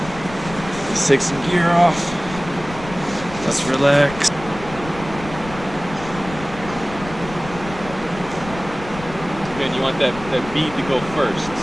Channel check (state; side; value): noise; left; rumble, 13 dB below the sound